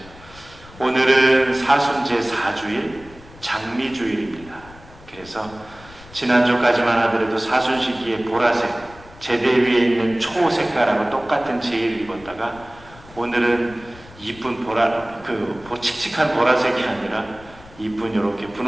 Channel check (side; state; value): left; noise; rumble, 21 dB below the sound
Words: 오늘은 사순제 4주일 장미주일입니다. 그래서 지난주까지만 하더라도 사순 시기에 보라색 제대 위에 있는 초색깔하고 똑같은 제의를 입었다가 오늘은 이쁜 칙칙한 보라색이 아니라 이쁜 이렇게